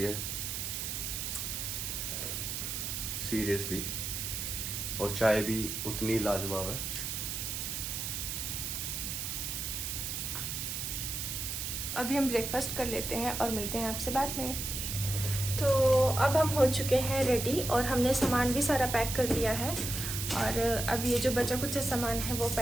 है, सीरियसली। और चाय भी उतनी लाजवाब है। अभी हम ब्रेकफास्ट कर लेते हैं और मिलते हैं आपसे बाद में। तो अब हम हो चुके हैं रेडी और हमने सामान भी सारा पैक कर लिया है। और अब ये जो बचा कुछ सामान है वो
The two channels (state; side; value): noise; right; hiss, 3 dB below the sound